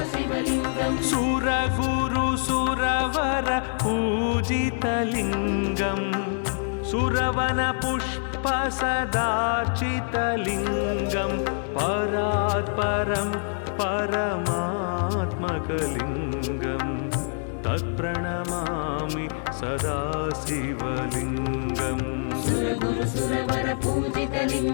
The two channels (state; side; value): silent; right; 61 dB below the other